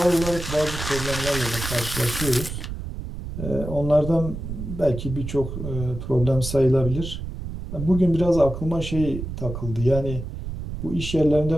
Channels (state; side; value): noise; right; rumble, 7 dB below the sound